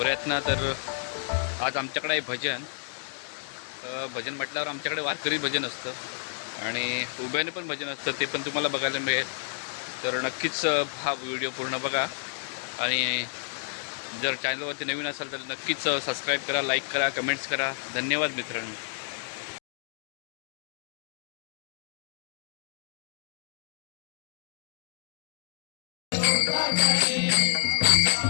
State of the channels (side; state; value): right; silent; digital silence